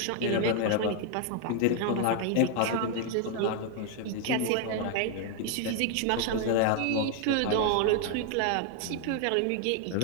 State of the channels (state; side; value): different; both; correlation 0.00